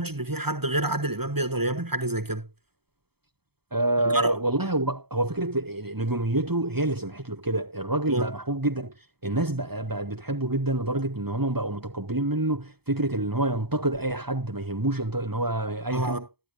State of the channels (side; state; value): left; late; 0.97 ms